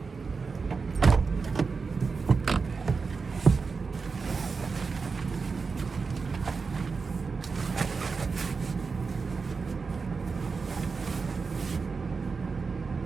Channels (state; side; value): quieter; left; 4.8 dB